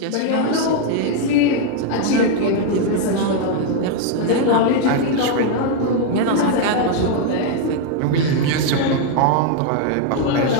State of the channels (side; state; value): both; different; correlation 0.00